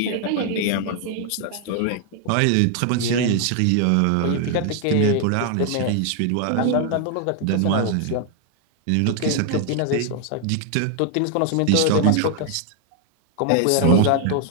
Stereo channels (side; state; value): both; different; correlation 0.00